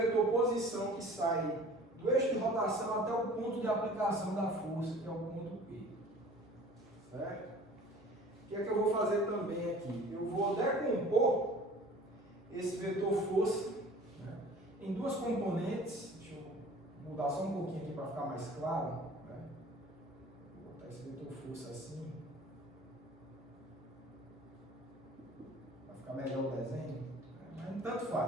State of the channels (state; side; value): normal; both; correlation 0.46